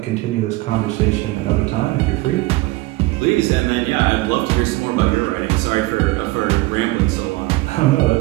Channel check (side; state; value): left; quieter; 20.2 dB